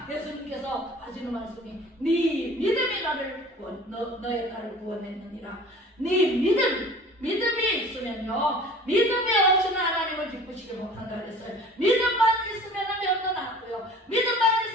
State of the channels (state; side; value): normal; both; correlation 0.45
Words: 예수님께서 하시는 말씀이 네 믿음이 나를 너의 딸을 구원했느니라. 네 믿음이 있으면요 믿음이 없이는 하나님을 기쁘시게 못한다 그랬어요. 믿음만 있으면 병도 낫고요, 믿음만